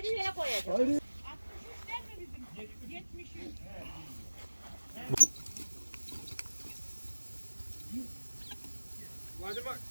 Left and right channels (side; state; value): both; inverted; correlation -1.00